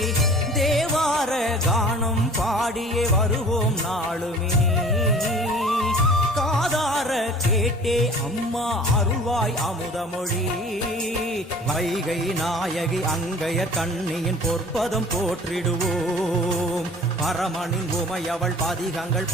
தேவ தேவார கானம் பாடியே வருவோம் நாளுமே காதார கேட்டே அம்மா அருள்வாய் அமுதமொழி வைகை நாயகி அங்கையர் கண்ணியின் பொற்பதம் போற்றிடுவோம் பரமனின் உமையவள் பதிகங்கள்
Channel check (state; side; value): normal; both; correlation 0.46